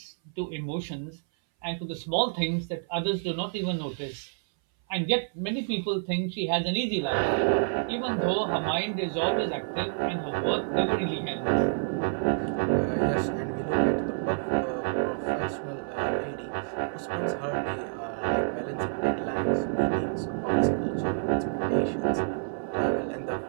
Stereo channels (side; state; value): left; silent; 59 dB below the other